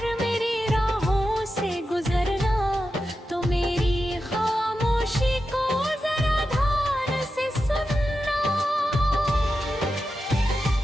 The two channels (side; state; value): both; normal; correlation 0.90